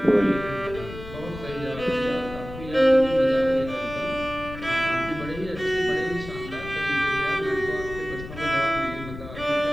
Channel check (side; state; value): left; noise; rumble, 12 dB below the sound